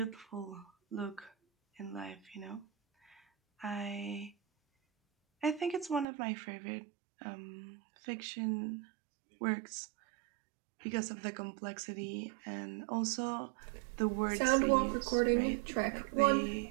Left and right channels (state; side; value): drops out; left; at 6.1 s